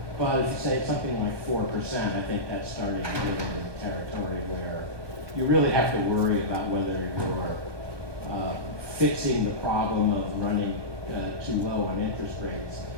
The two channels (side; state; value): left; late; 1.2 ms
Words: But if you say something like 4%, I think that's starting to get into territory where you really have to worry about whether you're fixing the problem of running too low on interest rates